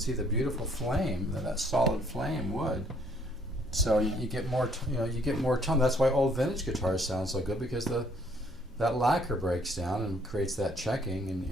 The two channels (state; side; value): normal; both; correlation 0.64